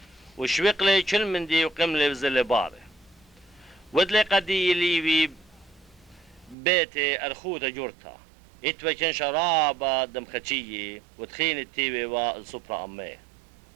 وشويقلي كل من دي وقملي بزل باري ودلي قدي ليبي بيتي أرخوتا جورتا اتوكن شرابة دم خدشية وتخين التيوي والسوبرا أمي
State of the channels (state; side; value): drops out; left; at 6.6 s